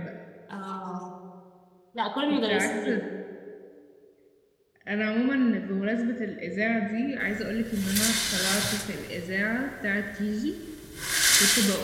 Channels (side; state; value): both; identical; correlation 1.00